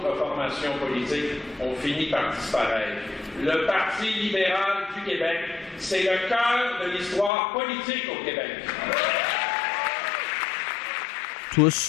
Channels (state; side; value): drops out; right; at 7.3 s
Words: formations politiques ont fini par disparaître. Le Parti libéral du Québec, c'est le cœur de l'histoire politique au Québec.